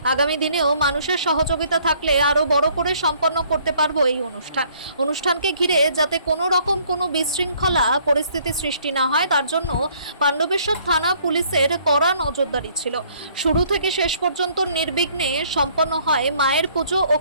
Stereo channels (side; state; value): both; inverted; correlation -0.62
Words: আগামী দিনেও মানুষের সহযোগিতা থাকলে আরও বড় করে সম্পন্ন করতে পারবো এই অনুষ্ঠানকে ঘিরে যাতে কোনো রকম কোনো বিশৃঙ্খলা পরিস্থিতি সৃষ্টি না হয়, তার জন্য পাণ্ডবেশ্বর থানা পুলিশের কড়া নজরদারি ছিল। শুরু থেকে শেষ পর্যন্ত নির্বিঘ্নে সম্পন্ন হয় মায়ের পুজো ও